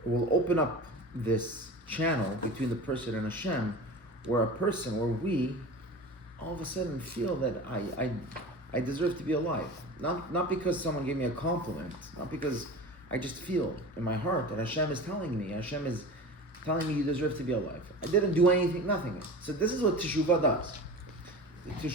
it will open up this channel between the person and Hashem, where we, all of a sudden feel that I deserve to be alive. Not because someone gave me a compliment, not because I just feel in my heart that Hashem is telling me, Hashem is telling me you deserve to be alive. I didn't do anything, nothing. So this is what teshuvah does. The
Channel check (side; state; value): both; normal; correlation 0.34